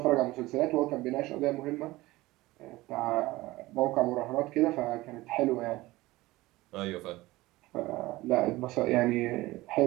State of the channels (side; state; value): left; quieter; 19.1 dB